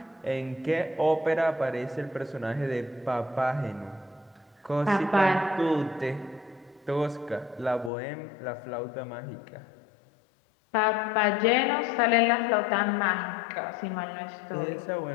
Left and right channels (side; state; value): right; drops out; at 7.9 s